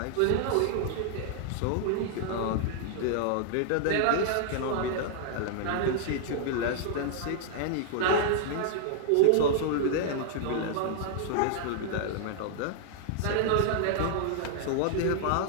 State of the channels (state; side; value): different; both; correlation -0.01